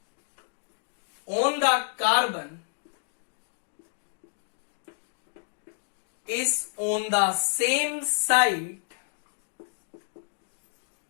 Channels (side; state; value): right; silent; digital silence